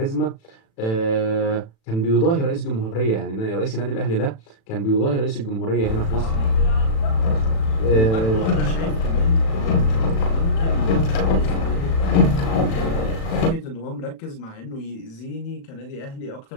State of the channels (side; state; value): right; late; 36 ms